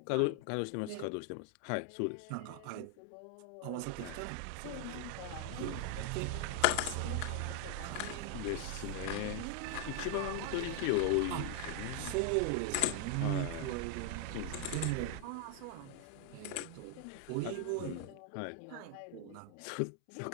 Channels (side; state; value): both; different; correlation 0.00